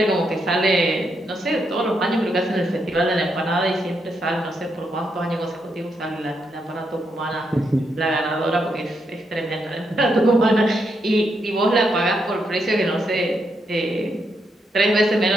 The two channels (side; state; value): both; normal; correlation 0.80